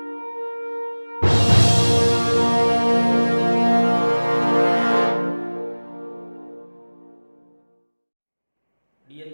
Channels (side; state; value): both; inverted; correlation -1.00